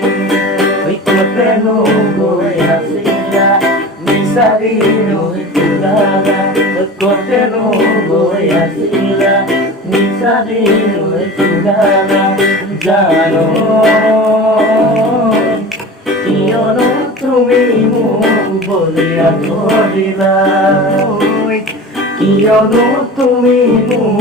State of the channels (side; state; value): both; normal; correlation 0.35